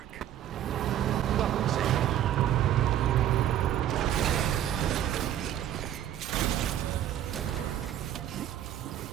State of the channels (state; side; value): quieter; left; 11.2 dB